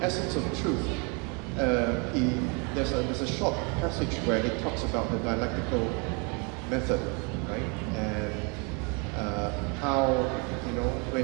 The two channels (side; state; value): left; quieter; 33.3 dB